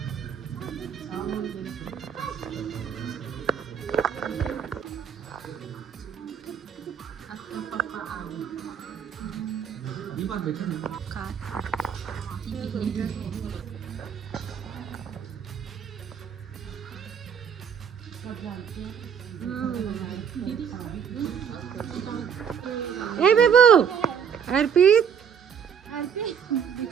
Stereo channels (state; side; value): quieter; left; 7.5 dB